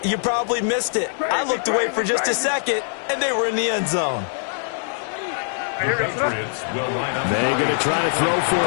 you probably missed it. I looked away for just a second, and they were in the end zone. The Patriots will line up. They're going to try to throw for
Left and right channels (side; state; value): right; silent; digital silence